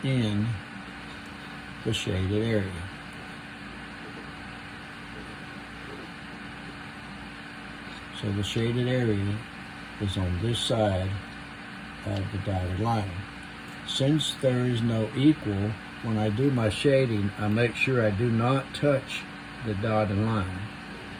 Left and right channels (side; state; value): both; identical; correlation 1.00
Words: in the shaded area. So the shaded area is on this side of the dotted line. Since there is no equal, when I do my shading, I make sure I do not touch the dotted line